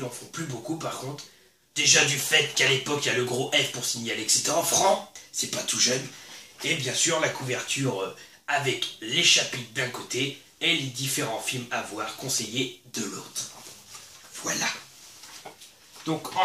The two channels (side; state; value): both; identical; correlation 1.00